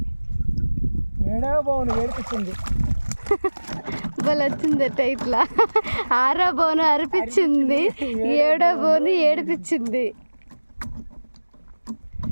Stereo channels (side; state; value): both; inverted; correlation -1.00